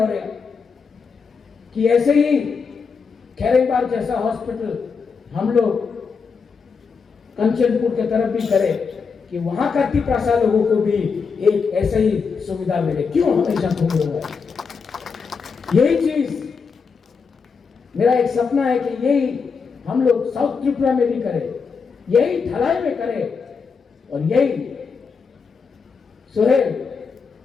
कि ऐसे ही खैरेबार जैसा हॉस्पिटल हम लोग कंचनपुर की तरफ भी करें, कि वहां का तिपरासा लोगों को भी एक ऐसा ही सुविधा मिले। क्यों हमेशा घूम रहा है? यही चीज मेरा एक सपना है कि यही हम लोग साउथ त्रिपुरा में भी करें, यही ढलाई में करें, और यही सुहेल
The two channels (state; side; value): quieter; right; 5.4 dB